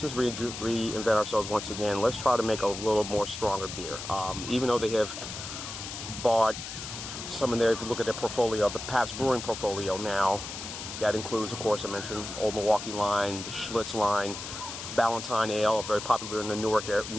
reinvent ourselves once again. Let's try to make a little more stronger beer. Even though they have bought some in there, if you look at their portfolio, the Pabst Brewing portfolio now, that includes, of course, I mentioned Old Milwaukee line, the Schlitz line, Ballantine Ale, very popular in the Newark,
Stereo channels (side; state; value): left; noise; hiss, 8 dB below the sound